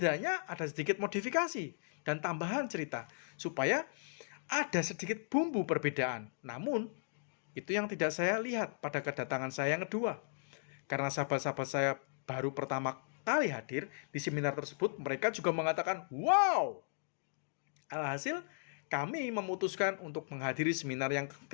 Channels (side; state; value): right; silent; digital silence